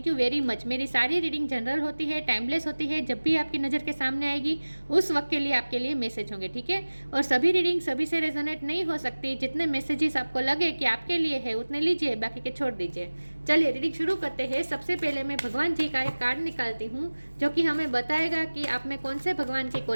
यू वेरी मच। मेरी सारी रीडिंग जनरल होती है, टाइमलेस होती है। जब भी आपकी नज़र के सामने आएगी उस वक्त के लिए आपके लिए मैसेज होंगे, ठीक है। और सभी रीडिंग सभी से रेजोनेट नहीं हो सकती। जितने मैसेजेस आपको लगे कि आपके लिए है उतने लीजिए, बाकी के छोड़ दीजिए। चलिए रीडिंग शुरू करते हैं। सबसे पहले मैं भगवान जी का एक कार्ड निकालती हूँ जो कि हमें बताएगा कि आप में कौन से भगवान की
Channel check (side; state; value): both; inverted; correlation -1.00